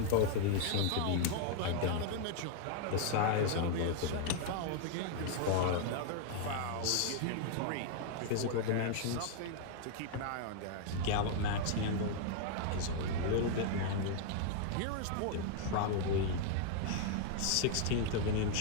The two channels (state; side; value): different; both; correlation 0.00